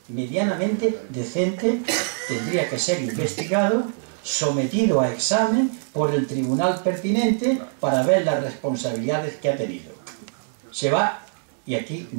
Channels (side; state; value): left; silent; digital silence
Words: decente, tendría que ser investigado, sometido a examen por el tribunal pertinente para ver las responsabilidades que ha tenido. Se va y aquí